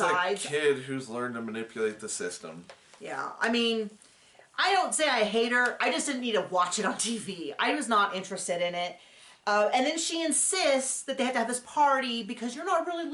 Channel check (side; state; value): both; identical; correlation 1.00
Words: This is a kid who's learned to manipulate the system. Yeah, I mean, I don't say I hate her. I just didn't need to watch it on TV. I was not interested in it. And then she insists that they have to have this party because you're not really